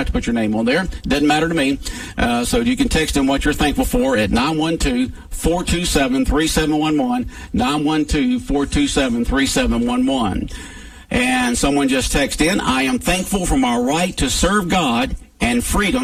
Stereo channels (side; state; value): both; identical; correlation 1.00